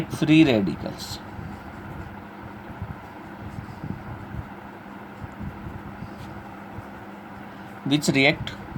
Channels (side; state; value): both; identical; correlation 1.00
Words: free radicals, which react